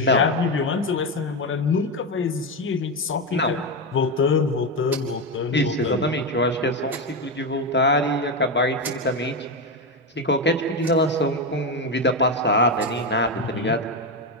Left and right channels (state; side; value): normal; both; correlation 0.11